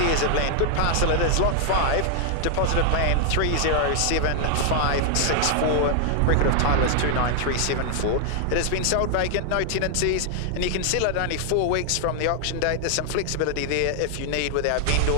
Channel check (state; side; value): different; both; correlation 0.00